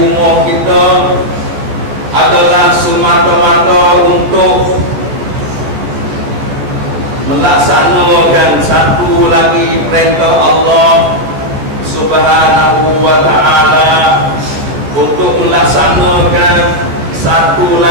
kita adalah semata-mata untuk melaksanakan satu lagi perintah Allah Subhanahu wa ta'ala, untuk melaksanakan satu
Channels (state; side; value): late; left; 14 ms